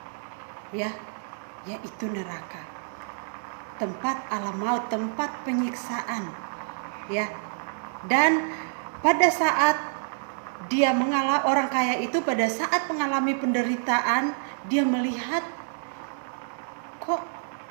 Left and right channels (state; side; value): silent; left; digital silence